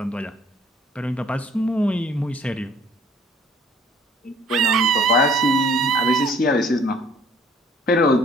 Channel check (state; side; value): normal; both; correlation 0.56